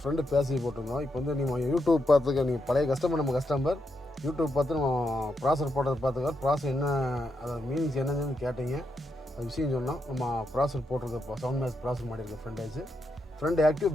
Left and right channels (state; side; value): normal; both; correlation 0.82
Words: ஃப்ரெண்டு பேசி போட்டிருந்தோம். இப்போ வந்து நீங்கள் யூடியூப் பார்த்துக்க நீங்கள் பழைய கஸ்டமர் நம்ம கஸ்டமர் யூடியூப் பார்த்து நம்ம ப்ராசர் போட்டதை பார்த்துக்க ப்ராசர் என்ன அதோட மீனிங்ஸ் என்னன்னு கேட்டீங்க. அது விஷயம் சொன்னோம். நம்ம ப்ராசர் போட்டிருக்க சவுண்ட் மேஸ் ப்ராசர் மாட்டியிருக்கோம். ஃப்ரண்ட் ஆக்டிவ்